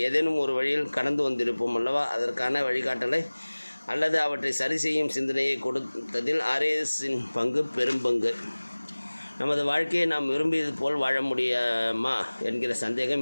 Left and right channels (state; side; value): inverted; both; correlation -1.00